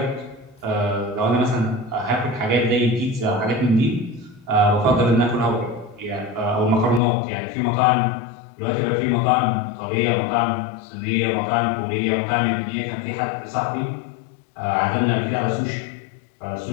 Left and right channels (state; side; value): drops out; right; at 7.0 s